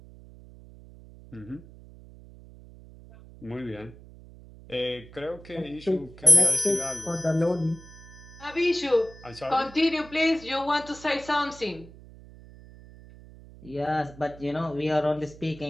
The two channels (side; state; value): right; noise; hum, 19 dB below the sound